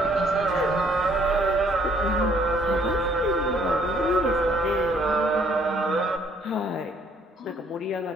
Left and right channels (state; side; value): normal; both; correlation 0.63